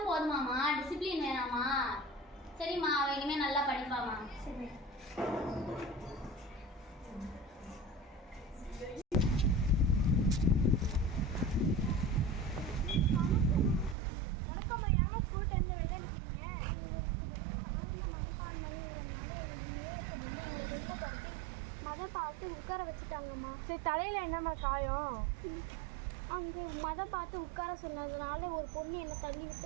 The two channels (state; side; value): drops out; left; at 14.0 s